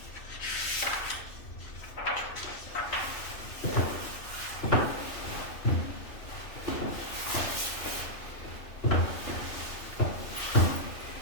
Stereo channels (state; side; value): late; right; 3.0 ms